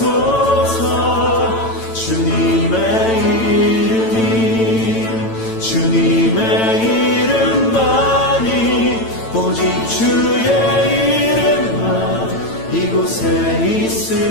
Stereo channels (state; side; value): late; right; 9.0 ms